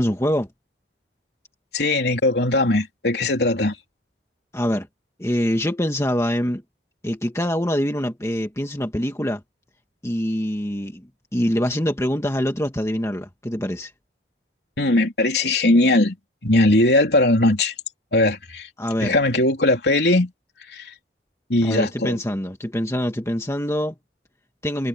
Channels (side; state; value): both; normal; correlation 0.48